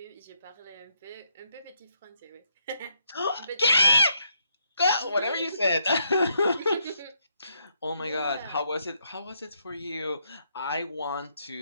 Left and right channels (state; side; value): inverted; both; correlation -0.76